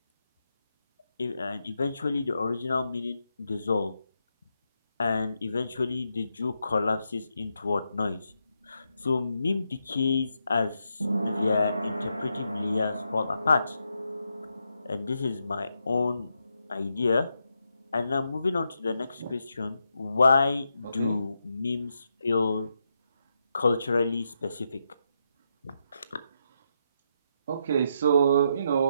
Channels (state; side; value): inverted; both; correlation -0.82